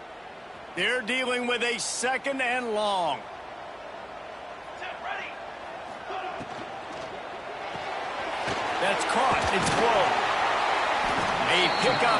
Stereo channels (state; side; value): identical; both; correlation 1.00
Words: They're dealing with a 2nd and long. That's caught. It's blown. A